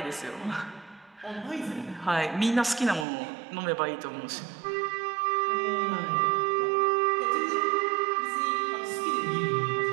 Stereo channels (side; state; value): left; drops out; at 3.1 s